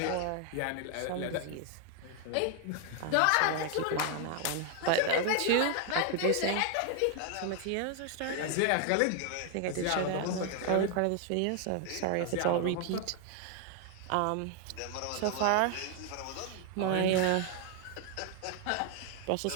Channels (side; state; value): both; different; correlation 0.00